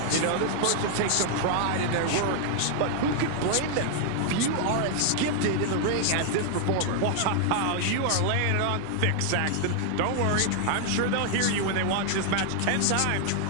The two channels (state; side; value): different; both; correlation 0.00